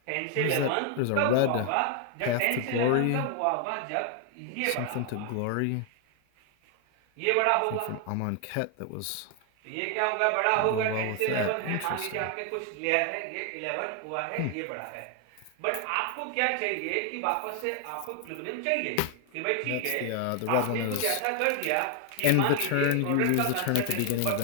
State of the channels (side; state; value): both; different; correlation 0.00